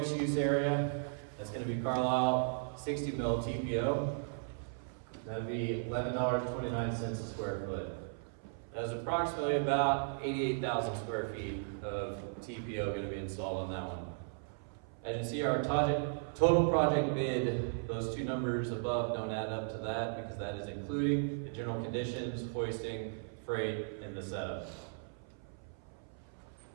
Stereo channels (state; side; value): silent; left; 54 dB below the other